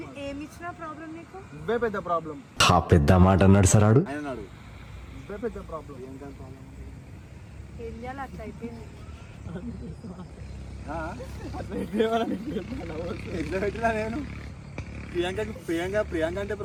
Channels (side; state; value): both; identical; correlation 1.00